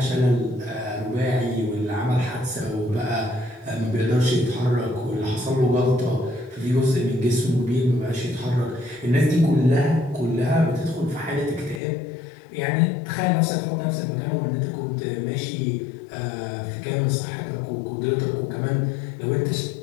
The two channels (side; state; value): right; drops out; at 11.8 s